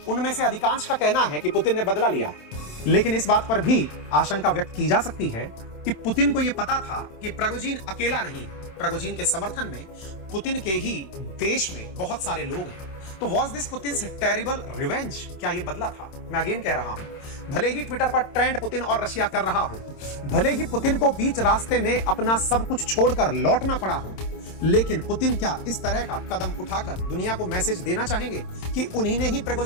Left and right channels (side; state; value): right; late; 27 ms